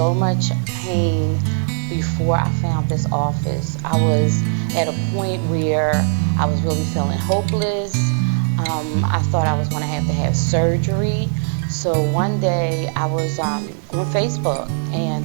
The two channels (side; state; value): left; silent; digital silence